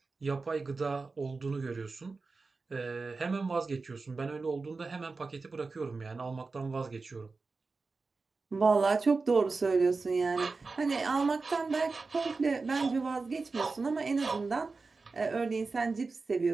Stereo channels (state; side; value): quieter; left; 4.1 dB